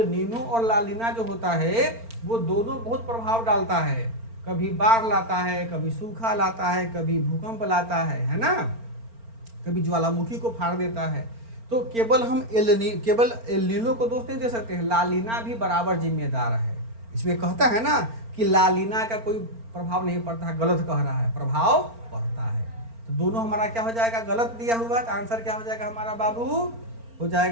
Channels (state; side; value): late; left; 4.4 ms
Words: नीनो और लानीना जो होता है वो दोनों बहुत प्रभाव डालता है। कभी बाढ़ लाता है, कभी सूखा लाता है, कभी भूकंप लाता है ना, कभी ज्वालामुखी को फाड़ देता है। तो केवल हम केवल एल नीनो को दोष नहीं दे सकते हैं, लालीना भी बराबर जिम्मेदार है। इसमें कहता है ना कि लालीना का कोई प्रभाव नहीं पड़ता है, गलत कह रहा है, प्रभाव पड़ता है। तो दोनों हमारा क्या हो जाएगा, गलत दिया हुआ। तो आंसर क्या हो जाएगा हमारा बाबू, हो